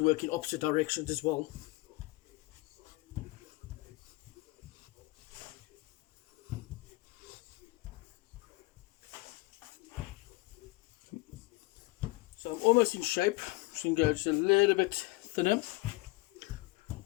work in opposite directions as well. So I'm almost in shape, so you can go just a little bit thinner.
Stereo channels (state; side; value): quieter; right; 22.7 dB